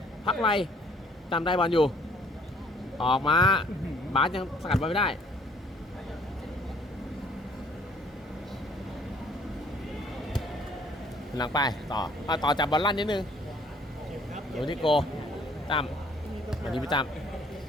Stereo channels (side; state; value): both; normal; correlation 0.59